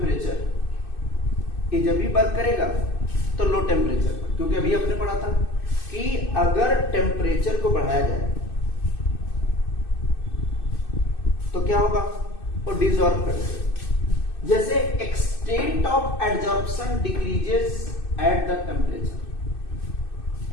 ये जब भी वर्क करेगा तो लो टेम्परेचर पर, क्योंकि अभी आपने पढ़ा था कि अगर टेम्परेचर को बढ़ाया जाए तो क्या होगा, वो डिसॉल्व कर देगा। जैसे extent of adsorption decreases at the temperature.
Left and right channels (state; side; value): late; right; 2.6 ms